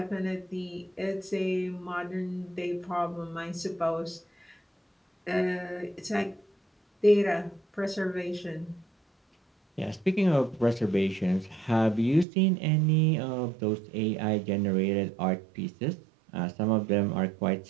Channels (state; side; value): drops out; left; at 12.2 s